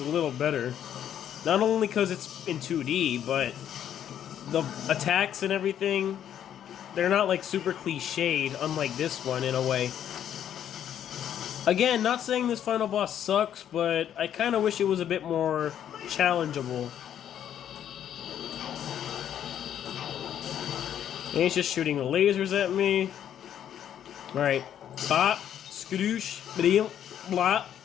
little better. Not only because it's in 2D, but the attacks and everything, they're not like super cliched, unlike this one in a way. Again, not saying this final boss sucks, but I kind of wish it was a bit more challengeable. And he's just shooting lasers at me. Alright. Bop, skadoosh, blim, blop,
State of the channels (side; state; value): right; quieter; 10.0 dB